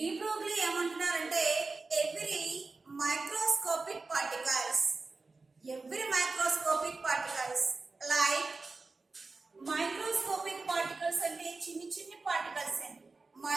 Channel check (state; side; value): quieter; left; 3.8 dB